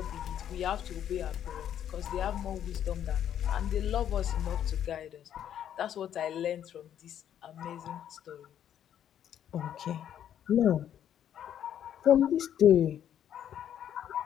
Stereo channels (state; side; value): quieter; right; 10.0 dB